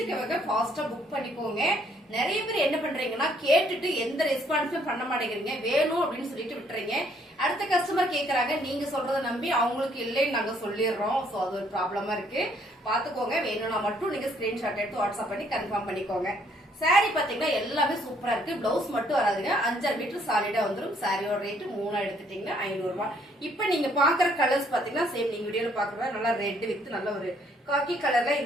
ஃபாஸ்டா புக் பண்ணிக்கோங்க. நிறைய பேர் என்ன பண்றீங்கன்னா கேட்டுட்டு எந்த ரெஸ்பான்ஸும் பண்ண மாட்டேங்கிறீங்க, வேணும் அப்படின்னு சொல்லிட்டு விட்டுறீங்க. அடுத்த கஸ்டமர் கேக்குறாங்க, நீங்க சொல்றத நம்பி அவங்களுக்கு இல்லைன்னு நாங்க சொல்லிடுறோம். சோ அது ஒரு ப்ராப்ளமா இருக்கு, பாத்துக்கோங்க. வேணும்னா மட்டும் நீங்க ஸ்கிரீன்ஷாட் எடுத்து வாட்ஸ்அப் பண்ணி கன்ஃபார்ம் பண்ணிக்கோங்க. சாரி பாத்தீங்கன்னா எல்லாமே சூப்பரா இருக்கு. பிளவுஸ் மட்டும் வராதுங்க, 5 மீட்டர் சாலிடா வந்துடும். சாரியோட ரேட் 3 எடுத்துட்டீங்கன்னா 500 ரூபாய். இப்ப நீங்க பாக்குற கலர்ஸ் பாத்தீங்கன்னா சேம் நீங்க வீடியோல பாக்குற நல்லா ரெட் வித் நல்ல ஒரு காக்கி கலர்ல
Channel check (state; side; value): normal; both; correlation 0.66